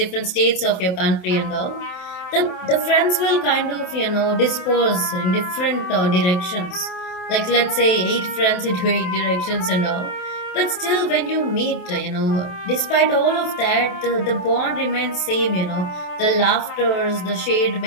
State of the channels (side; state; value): right; late; 28 ms